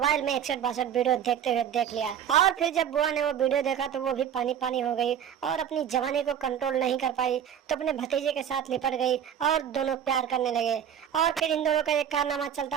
में 61-62 वीडियो देखते हुए देख लिया। और फिर जब बुआ ने वो वीडियो देखा तो वो भी पानी पानी हो गई और अपनी जवानी को कंट्रोल नहीं कर पाई तो अपने भतीजे के साथ लिपट गई और दोनों प्यार करने लगे। और फिर इन दोनों का एक कारनामा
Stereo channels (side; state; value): left; quieter; 9.1 dB